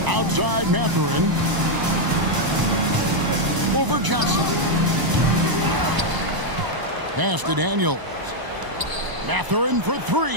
Outside Mathurin. Over Johnson. Pass to Daniels. Mathurin for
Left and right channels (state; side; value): late; left; 1.0 ms